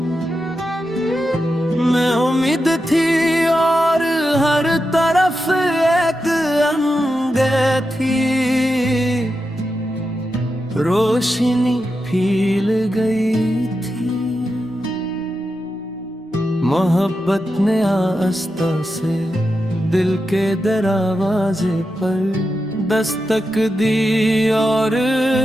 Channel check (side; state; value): both; normal; correlation 0.89